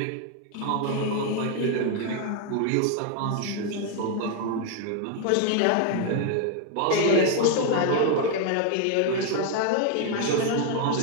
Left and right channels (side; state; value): both; different; correlation 0.01